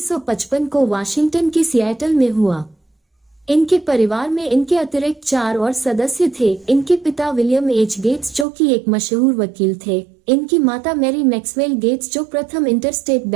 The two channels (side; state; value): left; drops out; at 8.5 s